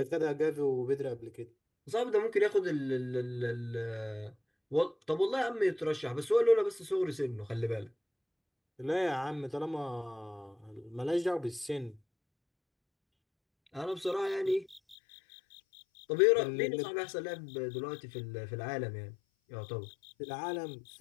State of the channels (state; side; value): drops out; right; at 15.0 s